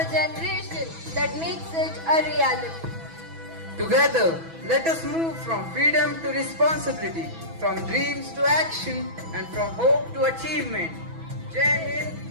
generation that makes it a reality. Together, let us move from freedom to responsibility, from dreams to action, and from hope to achievement. Jai Hind,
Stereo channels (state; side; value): late; left; 6.1 ms